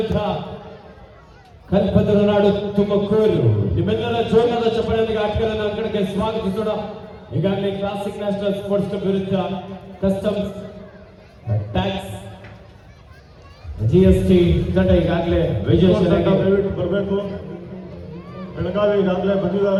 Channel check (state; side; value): identical; both; correlation 1.00